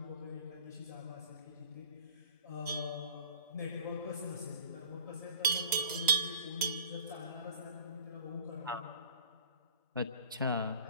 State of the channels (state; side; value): inverted; both; correlation -0.50